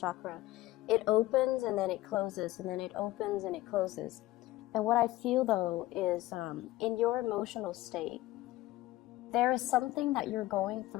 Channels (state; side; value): quieter; right; 17.0 dB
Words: It opens and then it closes, and then it opens and it closes. And what I feel though is in your emotional state, there is something that you're going